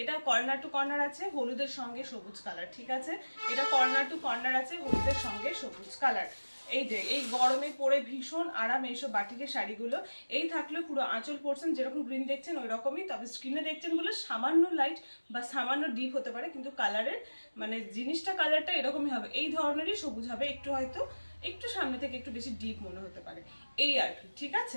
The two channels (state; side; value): inverted; both; correlation -1.00